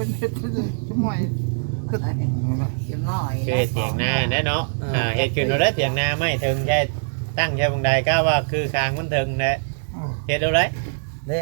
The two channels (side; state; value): left; silent; digital silence